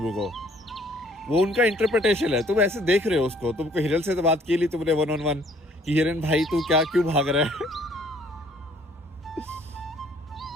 को। वो उनका इंटरप्रिटेशन है। तुम ऐसे देख रहे हो उसको, तुमको हिरन से तो बात की ली तुमने 1-on-1 कि हिरन भाई तू क्यों भाग रहा है?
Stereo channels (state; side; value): normal; both; correlation 0.60